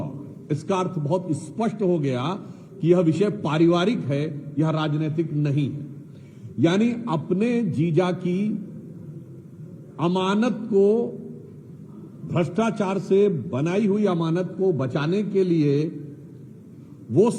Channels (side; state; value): both; identical; correlation 1.00